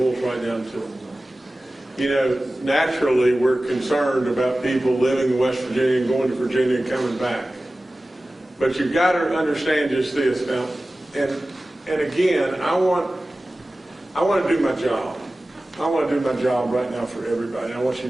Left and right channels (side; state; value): both; normal; correlation 0.96